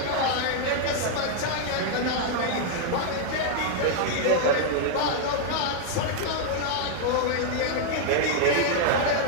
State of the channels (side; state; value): both; different; correlation 0.00